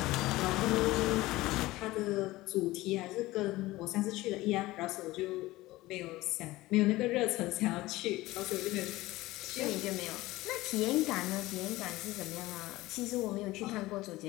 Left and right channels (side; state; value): right; quieter; 18.5 dB